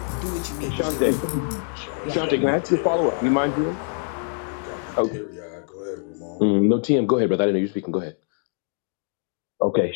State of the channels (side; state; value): right; silent; digital silence